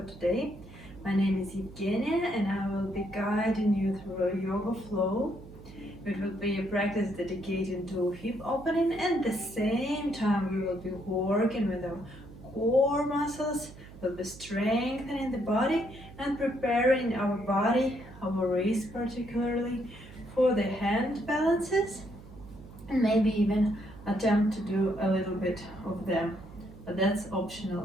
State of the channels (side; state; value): right; noise; hum, 17 dB below the sound